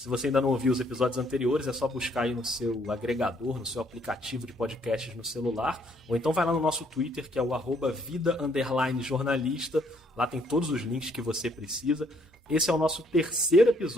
você ainda não ouviu os episódios anteriores, é só buscar aí no seu agregador, no seu aplicativo de podcasts no celular, ou então vai lá no nosso Twitter, que é o @vida_jornalista, lá tem todos os links que você precisa. Esse é o nosso terceiro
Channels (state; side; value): normal; both; correlation 0.67